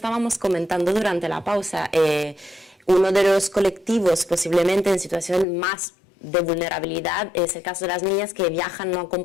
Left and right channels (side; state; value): right; drops out; at 5.5 s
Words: comentando durante la pausa, uno de los colectivos posiblemente en situación más de vulnerabilidad es el caso de las niñas que viajan no